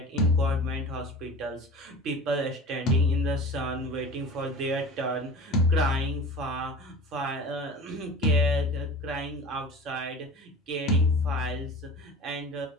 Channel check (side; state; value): both; normal; correlation 0.37